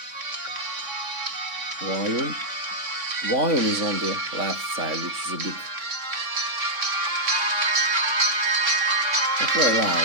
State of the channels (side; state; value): left; late; 3.5 ms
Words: Volume is on the left side, which is a bit not very